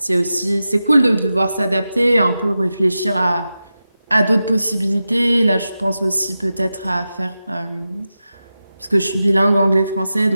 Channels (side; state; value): both; inverted; correlation -0.92